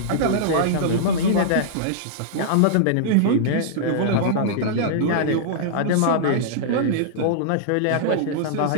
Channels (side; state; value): both; different; correlation -0.02